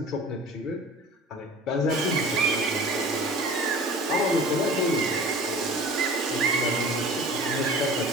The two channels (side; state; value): both; normal; correlation 0.41